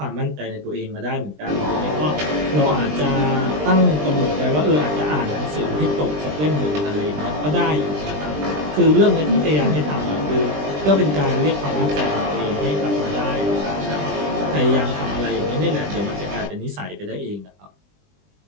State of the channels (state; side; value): late; left; 20 ms